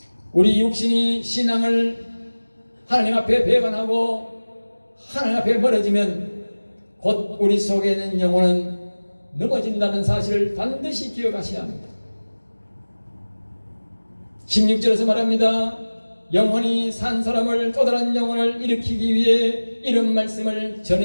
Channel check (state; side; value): inverted; both; correlation -1.00